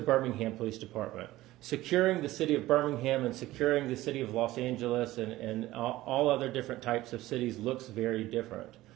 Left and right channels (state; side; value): quieter; left; 16.7 dB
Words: Police Department. Securing the city of Birmingham and securing the city of Los Angeles and all other different types of cities looks very different.